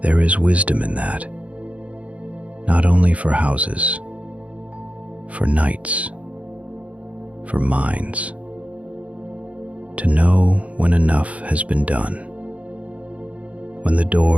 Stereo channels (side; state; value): left; late; 0.066 ms